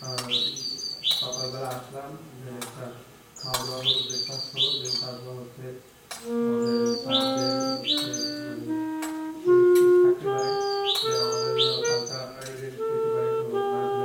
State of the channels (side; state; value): both; identical; correlation 1.00